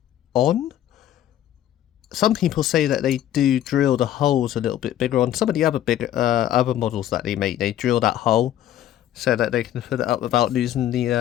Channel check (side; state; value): right; quieter; 11.9 dB